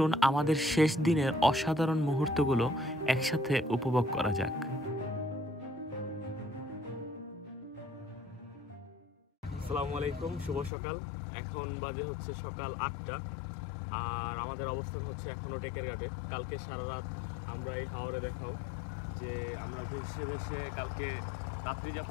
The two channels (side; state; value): right; drops out; at 10.7 s